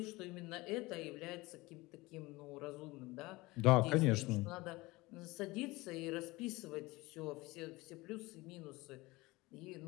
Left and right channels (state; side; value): quieter; right; 21.6 dB